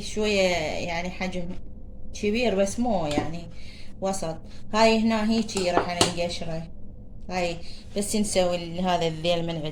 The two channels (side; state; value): both; identical; correlation 1.00